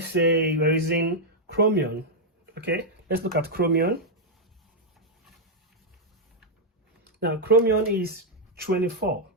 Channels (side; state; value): both; normal; correlation -0.03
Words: say we're using chromium. Okay, let's look at chromium. Now chromium is 24.